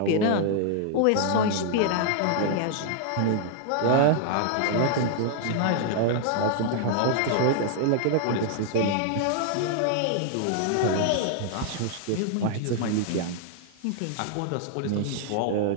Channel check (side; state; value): both; different; correlation 0.00